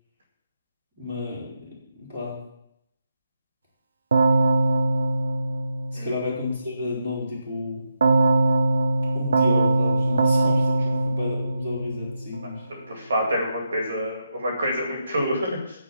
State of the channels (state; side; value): inverted; both; correlation -0.86